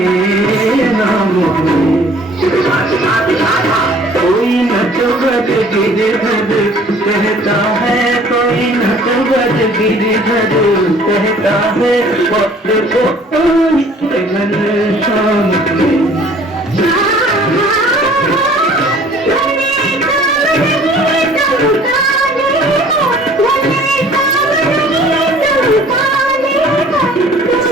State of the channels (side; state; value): both; normal; correlation 0.53